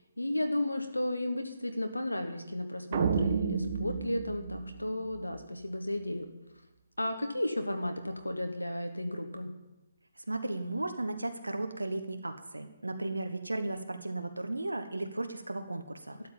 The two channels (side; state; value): both; inverted; correlation -0.88